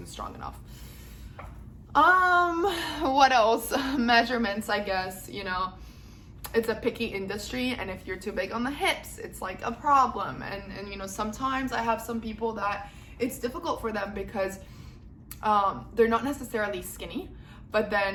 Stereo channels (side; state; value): both; identical; correlation 1.00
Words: strong enough. What else? Measurements, I guess. You know, it's a picky industry, and if you're too big on the hips, it's like a problem. And you know, sometimes I have some people that it's difficult for them because they're not necessarily skinny, but